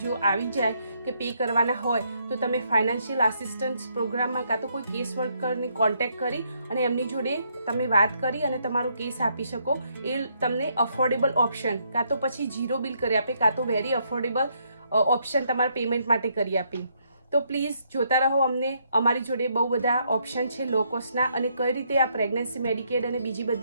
જો આવી જાય કે પે કરવાના હોય તો તમે ફાઇનાન્શિયલ આસિસ્ટન્સ પ્રોગ્રામમાં કાં તો કોઈ કેસ વર્કરને કોન્ટેક્ટ કરી અને એમની જોડે તમે વાત કરી અને તમારો કેસ આપી શકો. એ તમને અફોર્ડેબલ ઓપ્શન કાં તો પછી ઝીરો બિલ કરી આપે કાં તો વેરી અફોર્ડેબલ ઓપ્શન તમારા પેમેન્ટ માટે કરી આપે. તો પ્લીઝ જોતા રહો અમને. અમારી જોડે બહુ બધા ઓપ્શન છે લો કોસ્ટના અને કઈ રીતે આ પ્રેગ્નન્સી મેડિકેડ અને બીજી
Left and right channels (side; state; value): both; inverted; correlation -0.73